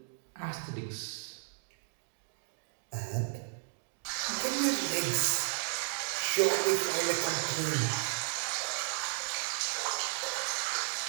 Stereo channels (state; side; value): silent; left; digital silence